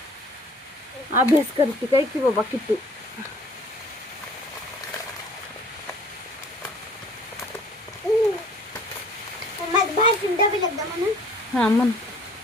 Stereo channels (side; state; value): both; normal; correlation 0.53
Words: अभ्यास करते काय की बाबा किट्टू. हा म्हण.